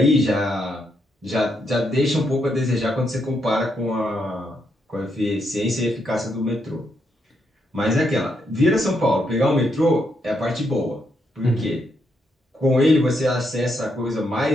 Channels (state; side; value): normal; both; correlation 0.78